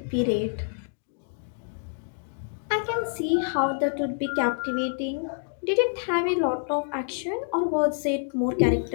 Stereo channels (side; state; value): right; silent; digital silence